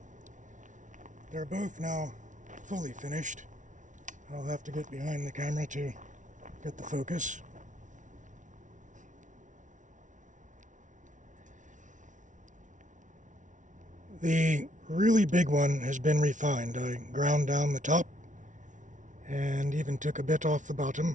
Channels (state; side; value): late; left; 0.37 ms